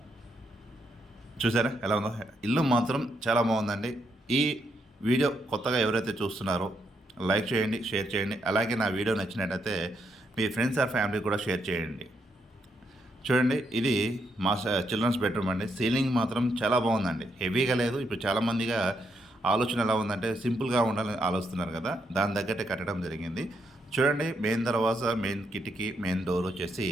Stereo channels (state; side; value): normal; both; correlation 0.78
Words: చూసారా ఎలా ఉందో. ఇల్లు మాత్రం చాలా బాగుందండి. ఈ వీడియో కొత్తగా ఎవరైతే చూస్తున్నారో లైక్ చేయండి, షేర్ చేయండి. అలాగే నా వీడియో నచ్చినట్టయితే మీ ఫ్రెండ్స్ ఆర్ ఫ్యామిలీ కూడా షేర్ చేయండి. చూడండి, ఇది మా చిల్డ్రన్స్ బెడ్రూమ్ అండి. సీలింగ్ మాత్రం చాలా బాగుందండి. హెవీగా లేదు. ఇప్పుడు చాలామందిగా ఆలోచన ఎలా ఉందంటే సింపుల్గా ఉండాలని ఆలోచిస్తున్నారు కదా, దాని తగ్గట్టే కట్టడం జరిగింది. చూడండి, మెయిన్ దర్వాజా, మెయిన్ కిటికీ, మెయిన్ డోర్ వచ్చేసి